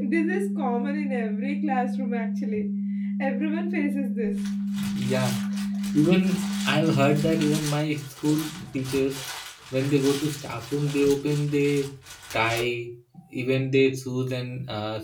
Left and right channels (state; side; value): identical; both; correlation 1.00